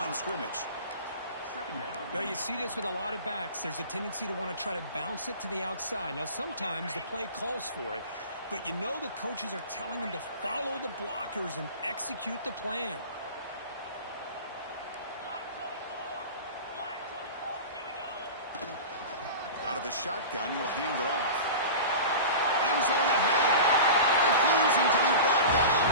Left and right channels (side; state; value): both; inverted; correlation -0.33